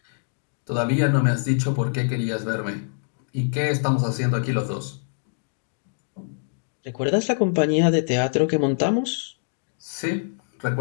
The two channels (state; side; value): silent; right; digital silence